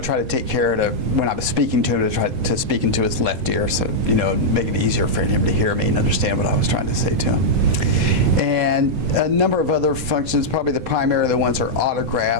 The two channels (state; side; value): late; left; 8.0 ms